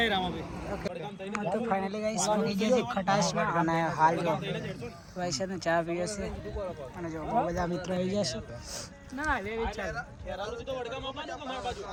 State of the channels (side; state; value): both; identical; correlation 1.00